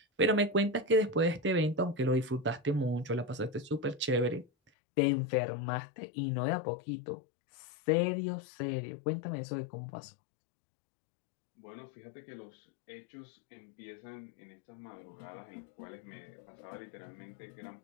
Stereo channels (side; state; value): right; drops out; at 4.7 s